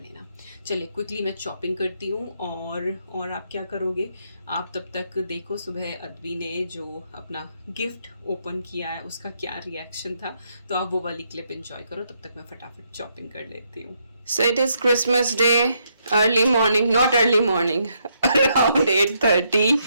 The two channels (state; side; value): inverted; both; correlation -0.76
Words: चलिए क्विकली मैं चॉपिंग करती हूँ। और आप क्या करोगे, आप तब तक देखो सुबह अद्वी ने जो अपना गिफ्ट ओपन किया है उसका क्या रिएक्शन था, तो आप वो वाली क्लिप एंजॉय करो, तब तक मैं फटाफट चॉपिंग कर लेती हूँ। So it is Christmas Day, early morning, not early morning, around 8:30,